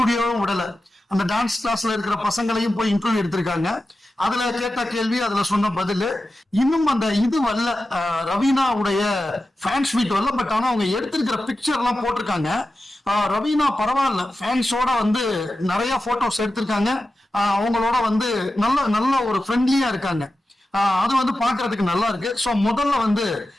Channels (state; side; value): normal; both; correlation 0.93